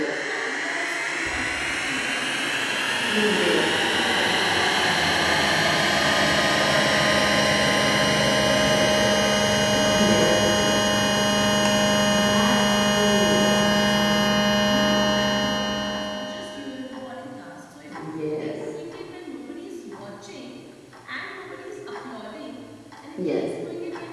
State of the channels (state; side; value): identical; both; correlation 1.00